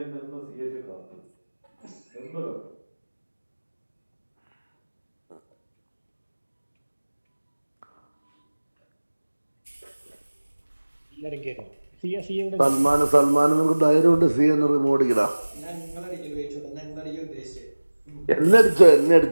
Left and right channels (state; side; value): inverted; both; correlation -1.00